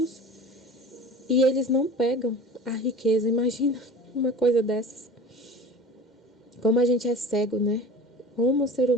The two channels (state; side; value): normal; both; correlation 0.38